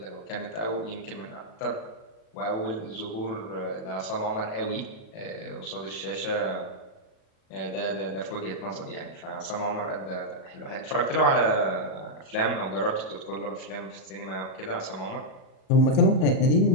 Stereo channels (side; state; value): right; late; 37 ms